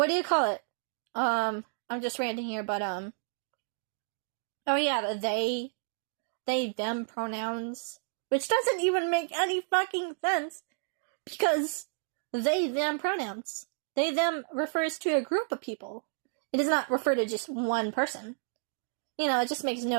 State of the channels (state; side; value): silent; left; digital silence